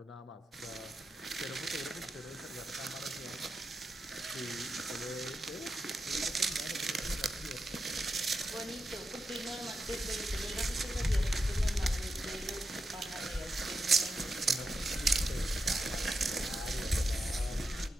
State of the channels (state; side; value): normal; both; correlation 0.87